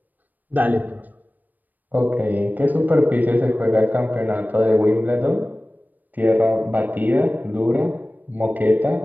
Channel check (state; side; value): late; left; 0.087 ms